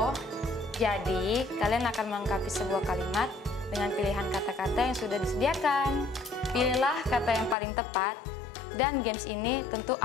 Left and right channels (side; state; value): right; drops out; at 7.6 s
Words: Jadi, kalian akan melengkapi sebuah kalimat dengan pilihan kata-kata yang sudah disediakan. Pilihlah kata yang paling tepat, dan games ini tentu